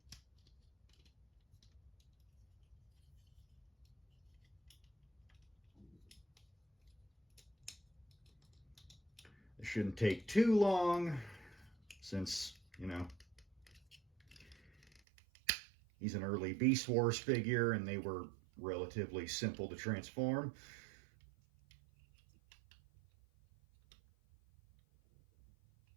It shouldn't take too long since, you know, he's an early Beast Wars figure and they were relatively simple to transform.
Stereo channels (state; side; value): drops out; left; at 15.0 s